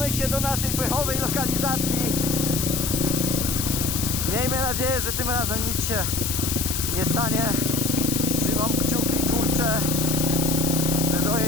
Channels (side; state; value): left; noise; hiss, 2 dB below the sound